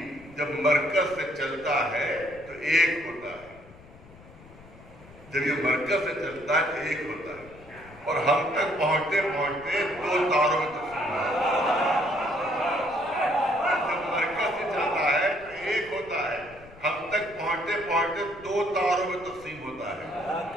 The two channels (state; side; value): noise; left; rumble, 21 dB below the sound